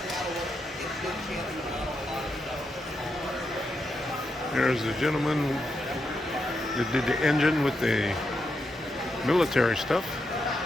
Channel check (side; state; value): both; normal; correlation 0.84